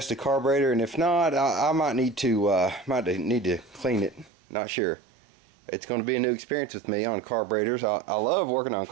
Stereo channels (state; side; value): drops out; left; at 4.3 s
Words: the carburetor. And if not, I might need to clean it. Not sure. It's going to be a new experience with me on carburetors. I love working on